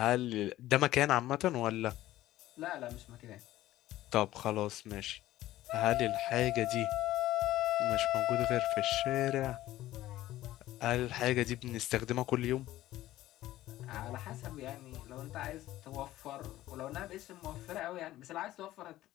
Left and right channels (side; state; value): right; quieter; 15.1 dB